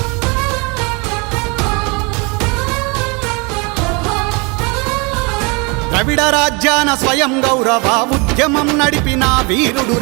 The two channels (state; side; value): quieter; left; 30.0 dB